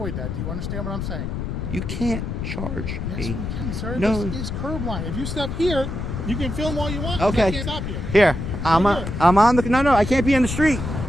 that. Do you understand what I'm saying? You can't charge Yes, me. we can, sir. No. This is curb line. If you step here, you can film all you want. Okay. I can't stop you. Here. I'm on the. No, I can't be in the street.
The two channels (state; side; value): noise; left; rumble, 4 dB below the sound